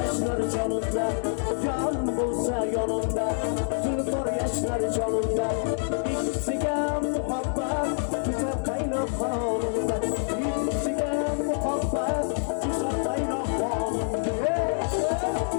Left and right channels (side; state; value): right; silent; digital silence